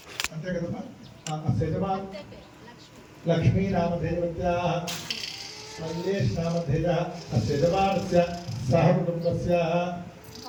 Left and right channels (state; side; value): identical; both; correlation 1.00